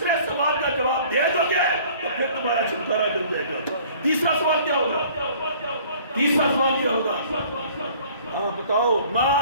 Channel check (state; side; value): inverted; both; correlation -0.53